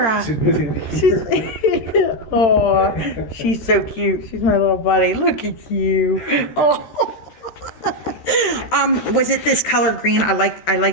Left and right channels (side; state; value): right; late; 13 ms